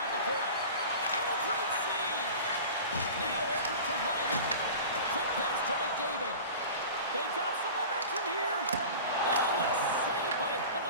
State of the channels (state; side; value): inverted; both; correlation -0.36